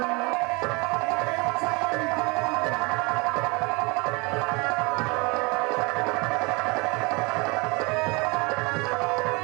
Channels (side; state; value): left; quieter; 27.6 dB